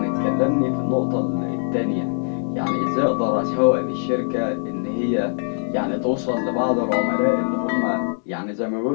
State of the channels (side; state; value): right; silent; digital silence